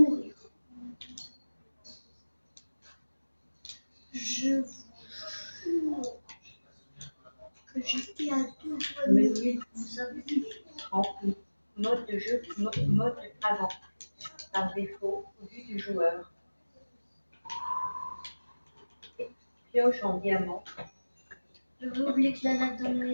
Je vous jure que j'étais à 2 doigts de mourir. Menu Vous avez vu? en mode de jeu. Mode avant. Par défaut. Au vu du joueur. Pioche en diamant. J'avais oublié que la lave dans le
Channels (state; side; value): inverted; both; correlation -1.00